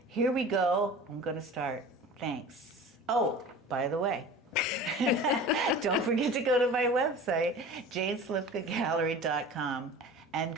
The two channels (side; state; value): both; normal; correlation 0.38